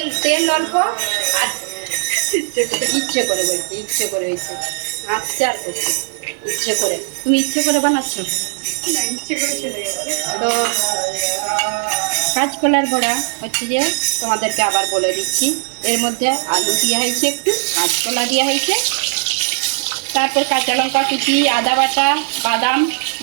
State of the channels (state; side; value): silent; left; 67 dB below the other